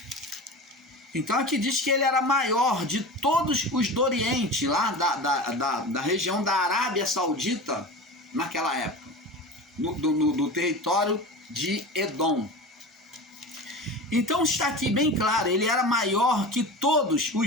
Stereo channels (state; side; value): normal; both; correlation 0.31